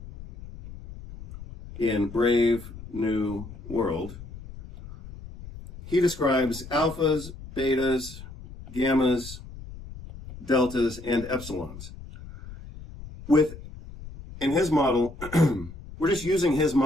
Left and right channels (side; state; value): left; noise; rumble, 15 dB below the sound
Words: in Brave New World, he describes alphas, betas, gammas, deltas, and epsilons. In his model, we're just using his